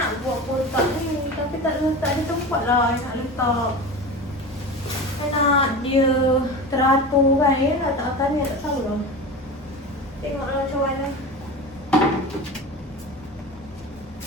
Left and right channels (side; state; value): both; normal; correlation 0.30